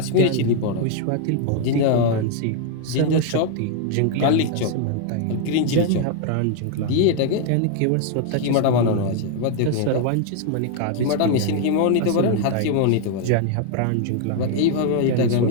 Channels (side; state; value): both; different; correlation 0.00